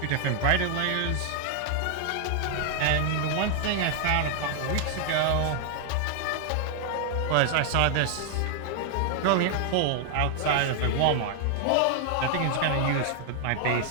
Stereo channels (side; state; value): both; different; correlation 0.00